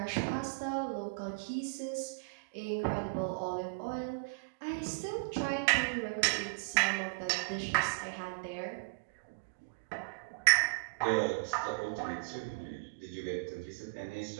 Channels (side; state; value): left; quieter; 32.1 dB